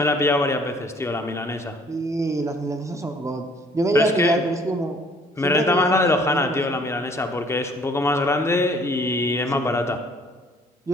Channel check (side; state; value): both; normal; correlation 0.58